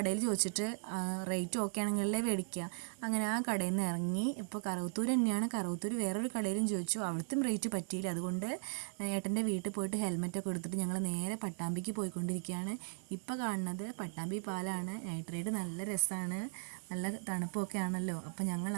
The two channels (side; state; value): left; silent; 53 dB below the other